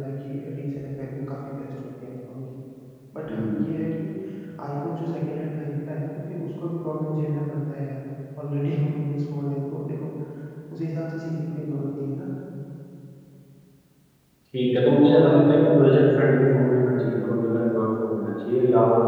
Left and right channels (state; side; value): identical; both; correlation 1.00